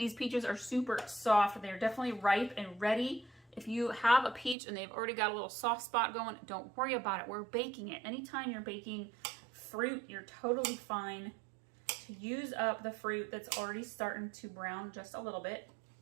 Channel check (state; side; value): drops out; left; at 4.5 s